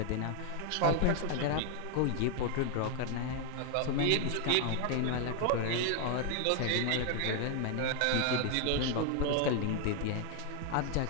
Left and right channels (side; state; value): both; different; correlation 0.00